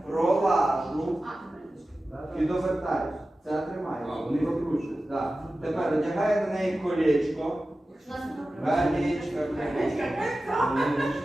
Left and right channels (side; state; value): both; normal; correlation 0.95